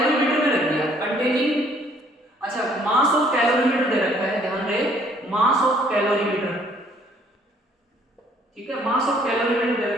में रख दिया कंटेनिंग, अच्छा मास ऑफ कैलोरीमीटर दे रखा है, ध्यान रहे मास ऑफ कैलोरीमीटर, ठीक है, मास ऑफ कैलोरीमीटर दे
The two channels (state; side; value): normal; both; correlation 0.62